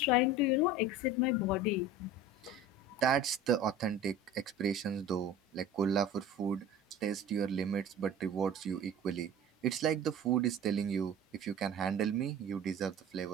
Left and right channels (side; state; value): both; normal; correlation 0.39